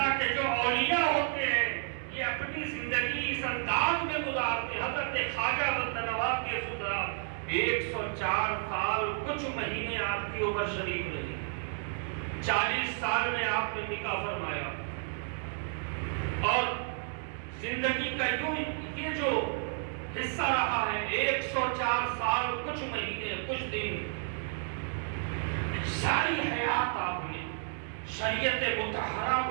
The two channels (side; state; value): left; silent; 57 dB below the other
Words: کے جو اولیاء ہوتے ہیں یہ اپنی زندگی اس انداز میں گزارتے ہیں۔ حضرت خواجہ بندہ نواز گیسو درات 104 سال کچھ مہینے آپ کی عمر شریف رہی، 40 سال میں آپ نے نکاح فرمایا، اور زندگی کا یوں یہ جو حصہ رہا ہے 104 سال کچھ مہینے کچھ دن، ساری حیات آپ نے شریعت مطہرہ